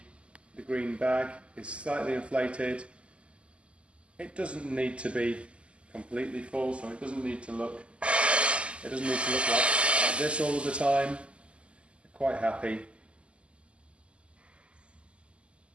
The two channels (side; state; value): left; late; 0.055 ms